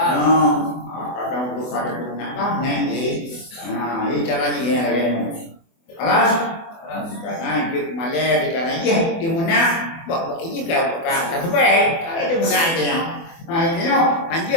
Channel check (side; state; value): right; late; 24 ms